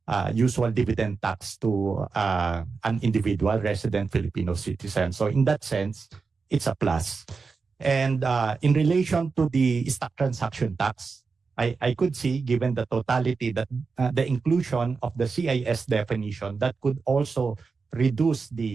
usual dividend tax to an individual resident Filipino citizen. So in that sense, it's a plus. And in relation to the stock transaction tax, I could see, given the totality, that the inclusion of the CIS definition, that could also reduce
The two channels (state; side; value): quieter; left; 4.7 dB